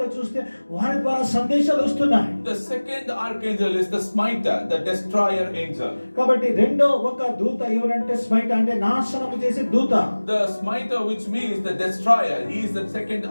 చూస్తే వారి ద్వారా సందేశాలు వస్తున్నాయి. The second archangel is the smiter, the destroyer angel. కాబట్టి రెండో ఒక దూత ఎవరంటే స్మైటర్ అంటే నాశనము చేసే దూత. The smiter, which means the destroyer, he is the second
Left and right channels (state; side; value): inverted; both; correlation -1.00